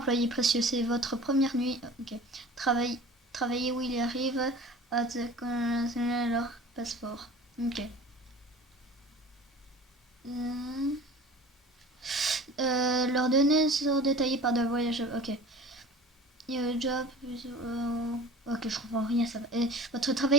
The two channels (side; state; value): both; normal; correlation 0.41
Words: précieux, c'est votre première nuit. Ok. Travaillez où il arrive à leur passeport. Ok. Leurs données sont détaillées par des voyageurs. Ok. Job. Ok, je comprends rien. Ça va. Votre